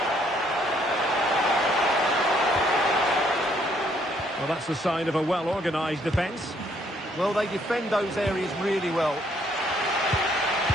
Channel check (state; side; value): normal; both; correlation 0.67